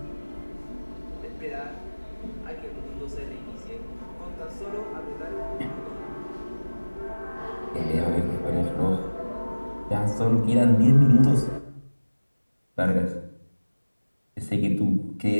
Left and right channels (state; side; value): inverted; both; correlation -1.00